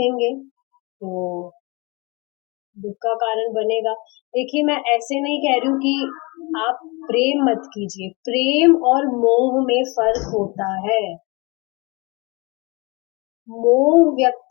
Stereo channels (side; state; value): right; quieter; 27.4 dB